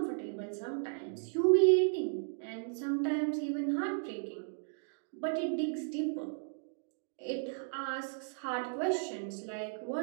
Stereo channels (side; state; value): left; silent; digital silence